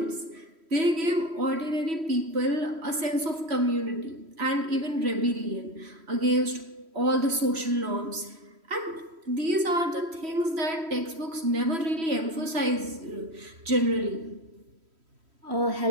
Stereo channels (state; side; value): late; left; 3.1 ms